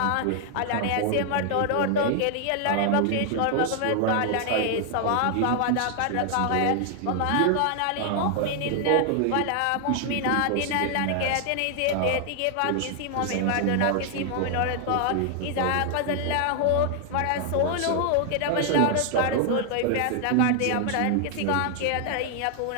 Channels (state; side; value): different; both; correlation 0.00